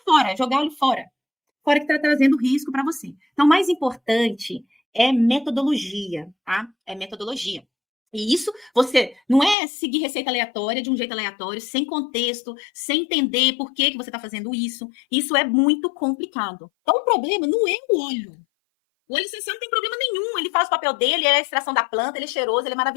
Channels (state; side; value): drops out; right; at 9.6 s